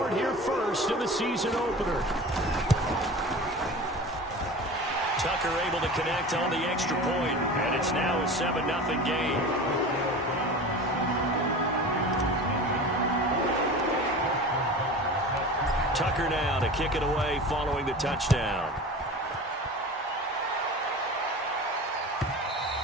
here first in the season opener. Tucker able to connect on the extra point, and it's now a 7-0 game. Tucker now to kick it away following the touchdown.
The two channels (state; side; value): normal; both; correlation 0.34